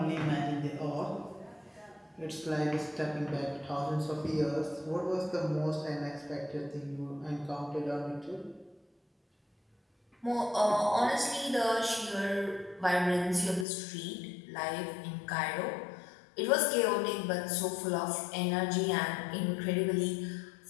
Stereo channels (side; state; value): right; drops out; at 13.7 s